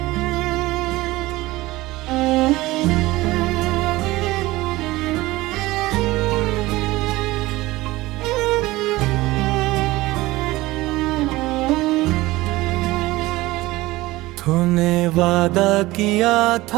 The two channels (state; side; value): quieter; left; 19.0 dB